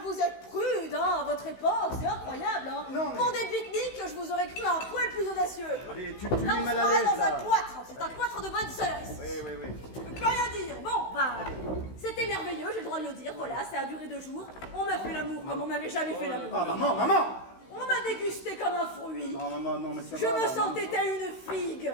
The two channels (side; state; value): right; late; 16 ms